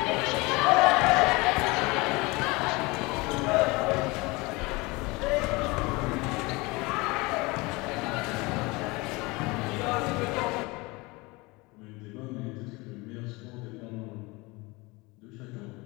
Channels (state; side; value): quieter; right; 24.3 dB